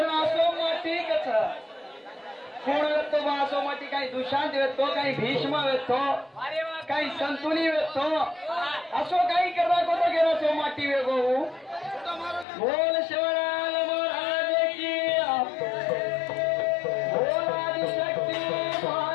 असो माती कच कोण वेतो असो माती काही दुशांत वेतो काही भीष्म वेतो काही संतुनी वेतो असो काही करा कोतो गेलो सो माती वेगो बोल शिवराज महाराज की बोल आदिशक्ती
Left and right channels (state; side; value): drops out; right; at 12.5 s